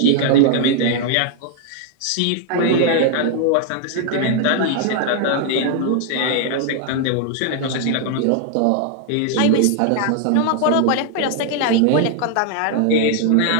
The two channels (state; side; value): different; both; correlation 0.00